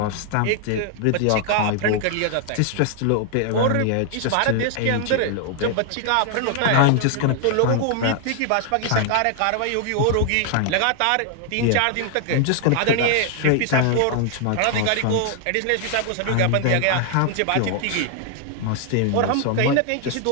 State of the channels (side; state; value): both; different; correlation 0.00